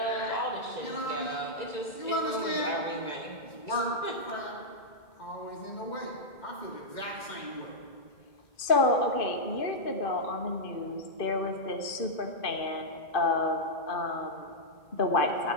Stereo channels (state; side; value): late; right; 2.5 ms